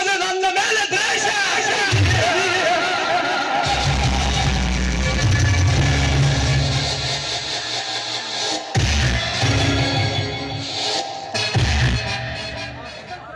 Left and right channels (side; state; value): both; identical; correlation 1.00